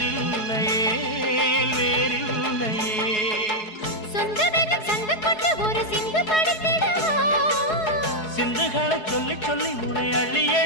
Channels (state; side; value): late; right; 4.7 ms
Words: வேறில்லையே வேறில்லையே. சொந்தமென சண்டை போட்டு ஒரு சிந்து படுத்திடவா, சிந்துகளை சொல்லி சொல்லி உனை அள்ளி